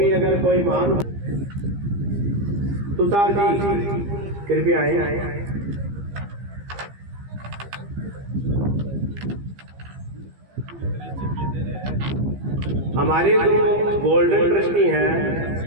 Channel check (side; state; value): left; late; 15 ms